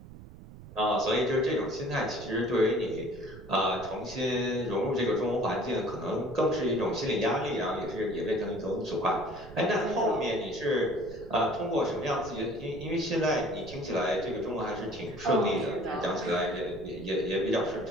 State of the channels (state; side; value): noise; right; rumble, 16 dB below the sound